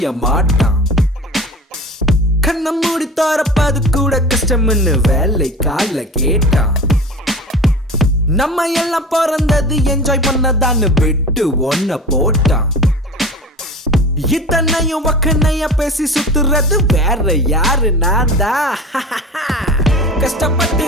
மாட்டான். கண்ணை மூடி தோறப்பது கூட கஷ்டம்னு வேலை கால கேட்டான். நம்ம எல்லாம் பிறந்தது என்ஜாய் பண்ணதான்னு விட்டு ஒன்ன போட்டான். இத்தனையும் வக்கனைய பேசி சுத்துறது வேற யாரு? நான் தான். கஷ்டப்பட்டு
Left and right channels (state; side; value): normal; both; correlation 0.36